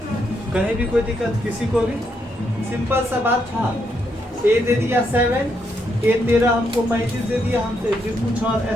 कहीं भी कोई दिक्कत किसी को भी? सिंपल सा बात था। ए दे दिया 7, ए 13 हमको 35 दे दिया, हमसे डी पूछा और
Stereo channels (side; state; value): both; normal; correlation 0.78